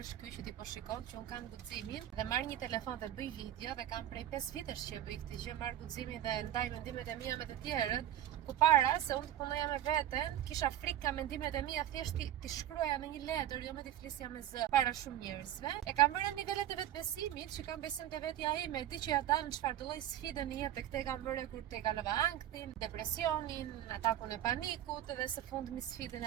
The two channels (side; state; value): left; quieter; 12.1 dB